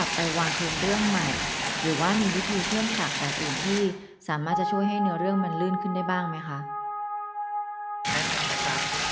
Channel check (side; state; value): both; identical; correlation 1.00